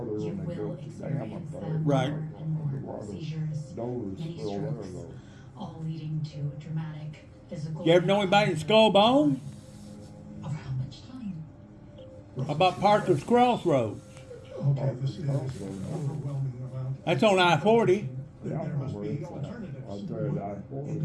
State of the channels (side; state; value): both; identical; correlation 1.00